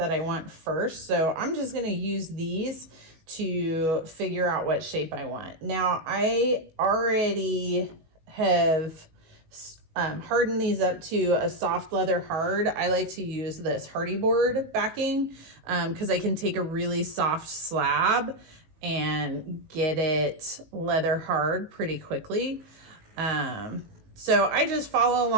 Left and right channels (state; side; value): late; left; 19 ms